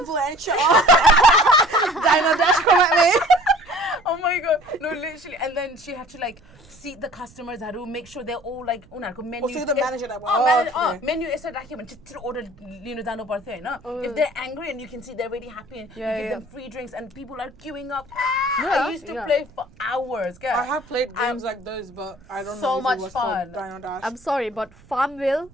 Dino Dash, come at me. oh my God, no, literally. And then she had to like seat the customers. Had to make sure they're all like menu. so you're the manager that okay. Menu is just order dano parthe na. If they're angry and you can see they're really happy and you give them free drinks and people are queuing up. I used to play for hours. I have played games like those, but I don't So know if much it was fun. called Dino Dash. I'm sorry, but Farmville,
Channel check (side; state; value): right; noise; rumble, 25 dB below the sound